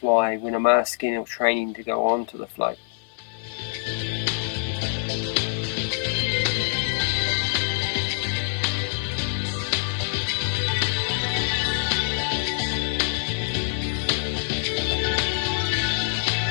when I'm asking or training to go on to the float.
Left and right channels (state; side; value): silent; right; digital silence